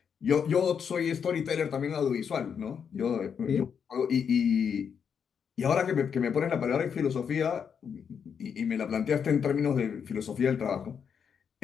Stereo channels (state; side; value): quieter; right; 7.1 dB